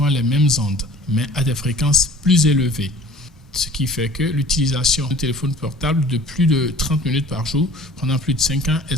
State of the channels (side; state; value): both; normal; correlation 0.47